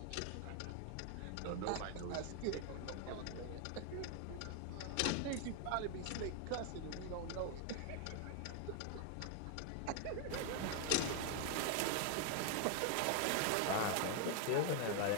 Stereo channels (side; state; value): both; different; correlation 0.01